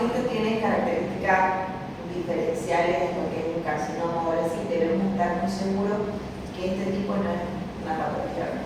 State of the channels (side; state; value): both; identical; correlation 1.00